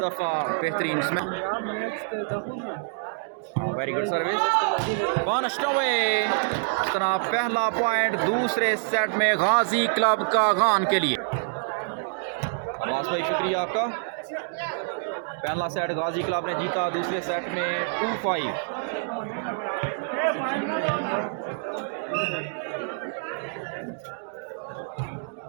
दफा बेहतरीन smash, very good service, punished away. इस तरह पहला पॉइंट दूसरे सेट में गाजी क्लब कागान के लिए। अब्बास भाई शुक्रिया आपका। पहला सेट गाजी क्लब ने जीता, दूसरे सेट में 2-5।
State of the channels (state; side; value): silent; left; digital silence